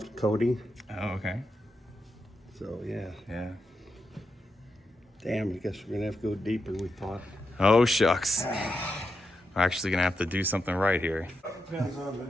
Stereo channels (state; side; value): normal; both; correlation 0.86